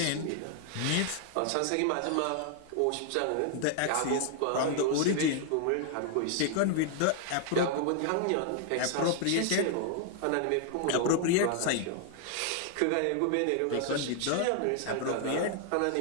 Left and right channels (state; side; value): different; both; correlation 0.00